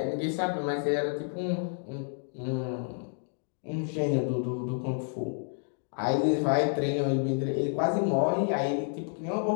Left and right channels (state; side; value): silent; right; 58 dB below the other